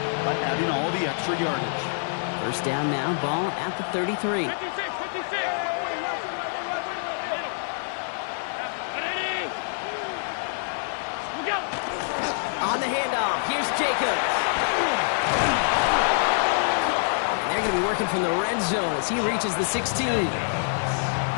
by adding all the extra yardage. First down now, ball at the 33. 56. On the handoff, here's Jacobs. And they're going to be working from the red zone as he reaches the 16. He'll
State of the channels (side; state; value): right; silent; digital silence